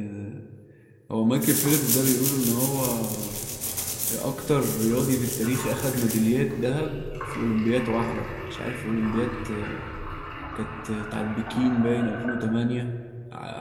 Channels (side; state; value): both; identical; correlation 1.00